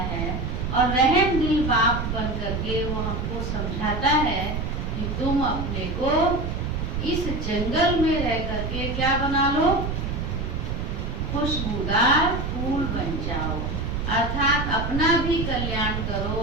है। और रहम दिल बाप बन करके वो हमको समझाता है कि तुम अपने को इस जंगल में रह करके क्या बना लो, खुशबूदार फूल बन जाओ। अर्थात अपना भी कल्याण करो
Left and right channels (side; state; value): right; noise; rumble, 3 dB below the sound